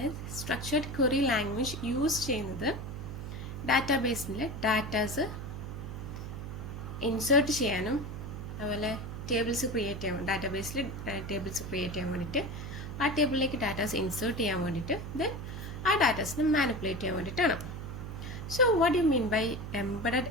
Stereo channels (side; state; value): right; noise; hum, 8 dB below the sound